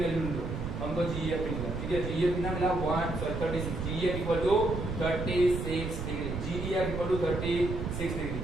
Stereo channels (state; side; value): noise; right; rumble, 5 dB below the sound